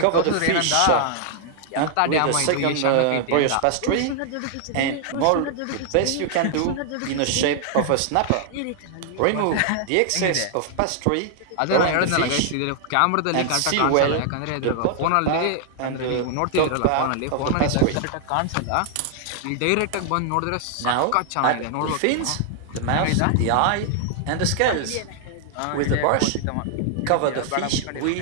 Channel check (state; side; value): different; both; correlation -0.01